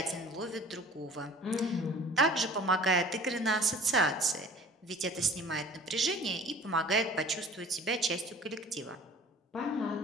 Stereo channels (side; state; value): both; normal; correlation 0.46